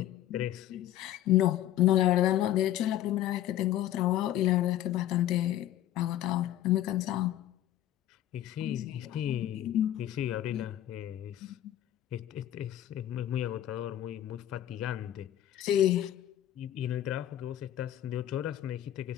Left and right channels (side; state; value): right; quieter; 12.7 dB